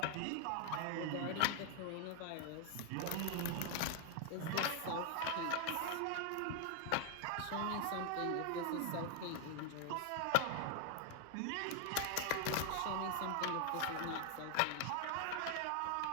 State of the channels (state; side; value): different; both; correlation 0.00